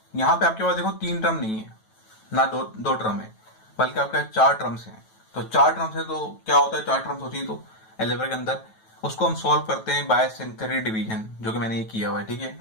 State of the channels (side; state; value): right; late; 9.2 ms